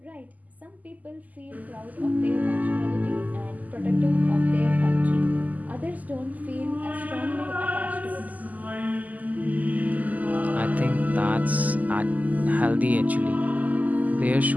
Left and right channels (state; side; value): late; left; 0.078 ms